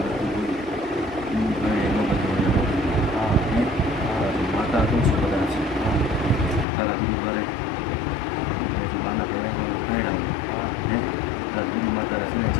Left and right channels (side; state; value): right; drops out; at 6.7 s